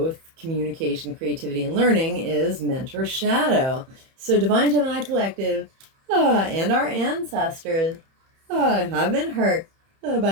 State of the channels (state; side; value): late; left; 31 ms